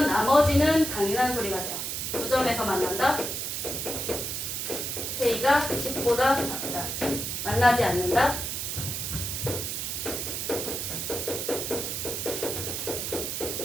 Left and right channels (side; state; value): right; noise; hiss, 3 dB below the sound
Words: 나머지는 당연한 소리가 돼요. 두 점에서 만난다. k가 10보다 작다. 만나지 않는다.